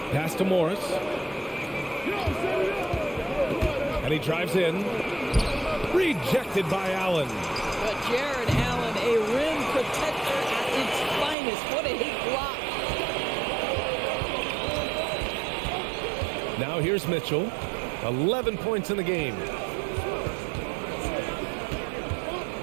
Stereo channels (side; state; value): left; drops out; at 11.4 s